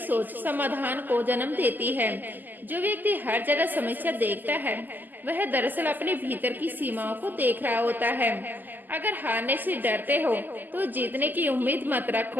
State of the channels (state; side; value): late; left; 0.087 ms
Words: समाधान को जन्म देती है। जो व्यक्ति हर जगह समस्या देखता है, वह दरअसल अपने भीतर की सीमाओं को देख रहा होता है। अगर हारने से डरते हो तो जीतने की उम्मीद मत